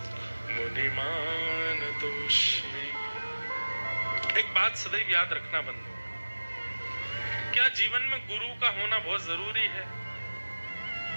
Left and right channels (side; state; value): both; inverted; correlation -1.00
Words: मुनिमानतोऽस्मि। एक बात सदैव याद रखना बंधु, क्या जीवन में गुरु का होना बहुत जरूरी है?